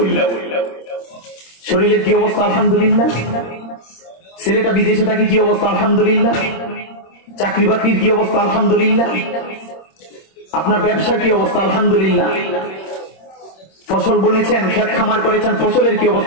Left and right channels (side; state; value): right; late; 26 ms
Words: শরীরের কি অবস্থা? আলহামদুলিল্লাহ। ছেলেটা বিদেশে থাকে, কি অবস্থা? আলহামদুলিল্লাহ। চাকরি বাকরির কি অবস্থা? আলহামদুলিল্লাহ। আপনার ব্যবসার কি অবস্থা? আলহামদুলিল্লাহ। ফসল বুনেছেন, ক্ষেত খামার করেছেন, ফসলের কি